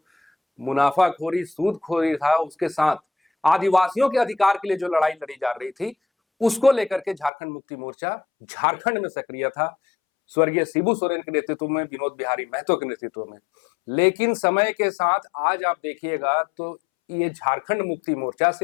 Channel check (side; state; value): right; drops out; at 7.3 s